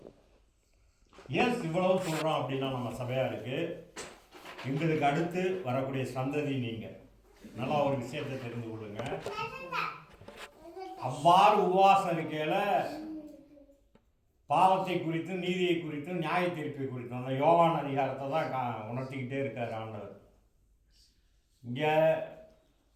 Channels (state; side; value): identical; both; correlation 1.00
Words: ஏன் இவ்வளவு சொல்கிறோம் அப்படின்னா, நம்ம சபையாருக்கு எங்களுக்கு அடுத்து வரக்கூடிய சந்ததி நீங்கள் நல்லா ஒரு விஷயத்தை தெரிந்து கொள்ளுங்க. அவ்வாறு உபவாசம் இருக்கையில் பாவத்தை குறித்தும் நீதியை குறித்தும் நியாய தீர்ப்பை குறித்தும் அந்த யோவான் அதிகாரத்தை தான் உணர்த்திக்கிட்டே இருக்கார் ஆண்டவர். இங்கே